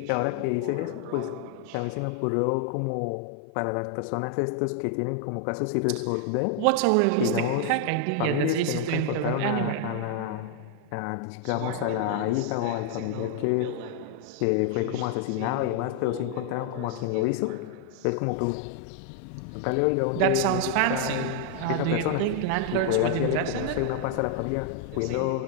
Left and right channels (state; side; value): different; both; correlation 0.00